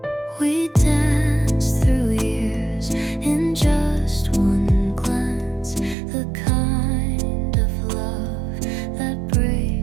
We danced through years in just one glance, the kind of love that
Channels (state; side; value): drops out; left; at 6.0 s